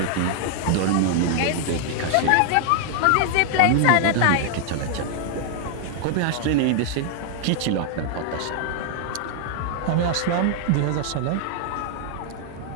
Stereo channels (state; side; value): different; both; correlation -0.01